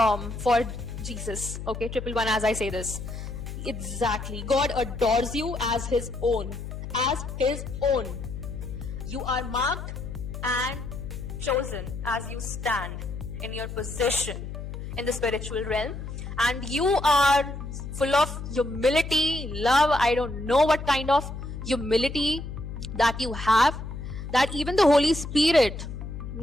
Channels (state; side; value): noise; left; hum, 8 dB below the sound